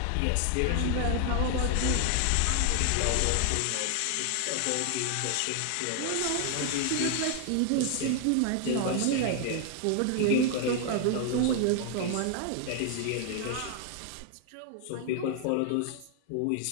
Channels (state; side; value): different; both; correlation 0.00